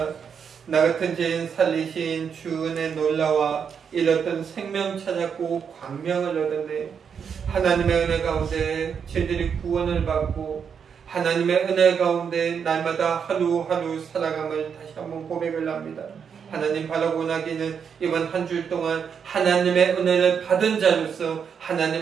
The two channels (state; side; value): quieter; left; 7.0 dB